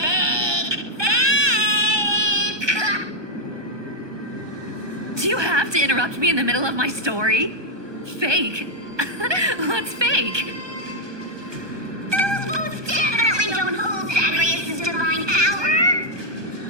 Do you have to interrupt me in the middle of my story? Fake? What's fake? Those boots definitely don't hold Zagreus' divine power.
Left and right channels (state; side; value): late; left; 1.2 ms